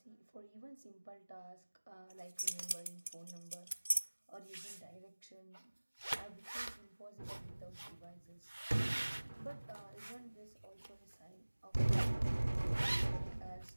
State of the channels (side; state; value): both; inverted; correlation -1.00